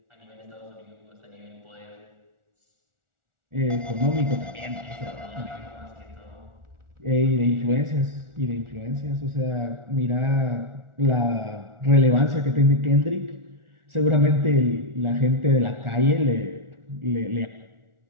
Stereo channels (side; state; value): left; late; 1.4 ms